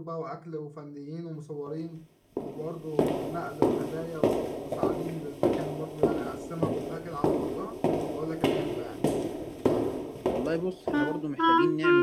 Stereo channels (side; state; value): both; identical; correlation 1.00